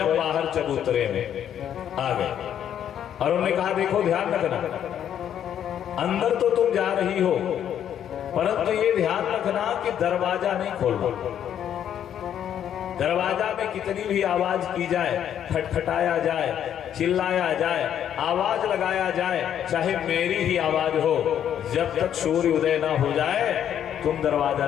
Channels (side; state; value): right; quieter; 9.8 dB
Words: बाहर चबूतरे में आ गए और उन्होंने कहा, देखो ध्यान रखना, अंदर तो तुम जा रही हो, परंतु ये ध्यान रखना कि दरवाजा नहीं खोलना। दरवाजा में कितनी भी आवाज की जाए, खटखटाया जाए, चिल्लाया जाए, आवाज लगाया जाए, चाहे मेरी ही आवाज हो, जब तक सूर्य उदय ना हो जाए तुम दरवाजा